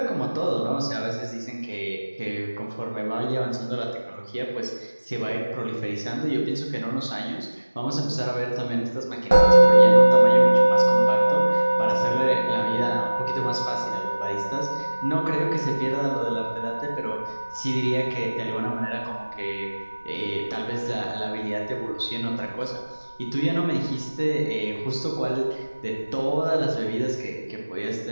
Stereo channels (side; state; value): both; inverted; correlation -1.00